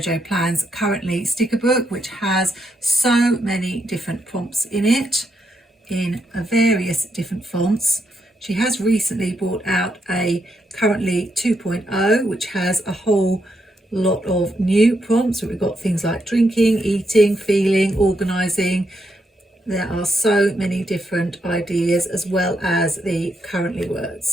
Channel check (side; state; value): both; normal; correlation 0.80